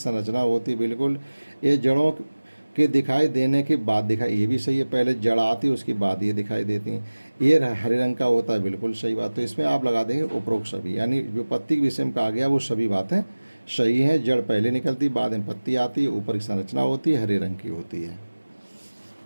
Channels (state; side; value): inverted; both; correlation -1.00